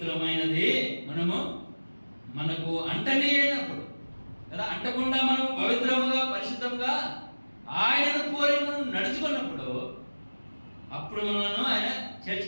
మనకు అంటనే అయినప్పుడు కదా. అంటకుండా మనం పవిత్రముగా పరిశుద్ధంగా ఆయనను పోలి మనం నడుచుకున్నప్పుడు అప్పుడు మనను ఆయన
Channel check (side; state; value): both; inverted; correlation -1.00